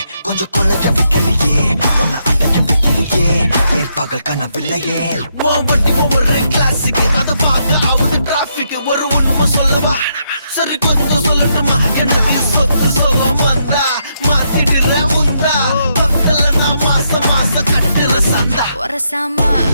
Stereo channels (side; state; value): both; inverted; correlation -0.78